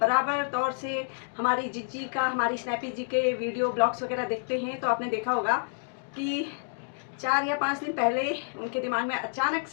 तौर से हमारी जिज्जी का, हमारी स्नैपी जी के वीडियो ब्लॉग्स वगैरह देखते हैं तो आपने देखा होगा कि 4 या 5 दिन पहले उनके दिमाग में अचानक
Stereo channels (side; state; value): right; silent; digital silence